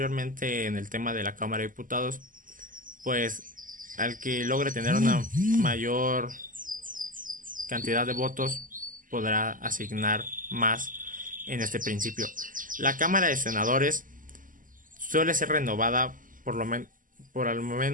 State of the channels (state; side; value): late; left; 0.39 ms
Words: en el tema de la Cámara de Diputados, pues al que logre tener una mayor cantidad de votos podrá asignar más en este principio. La Cámara de Senadores suele ser renovada por al